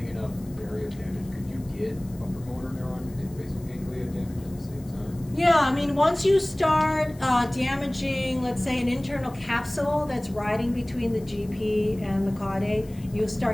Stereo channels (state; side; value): noise; left; hiss, 25 dB below the sound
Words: enough area of damage, could you get upper motor neuron and basal ganglia damage at the same time? Yeah, I mean, once you start damaging, let's say, an internal capsule that's riding between the GP and the caudate, you'll